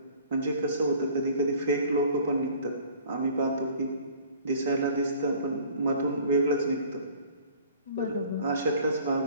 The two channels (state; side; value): inverted; both; correlation -0.51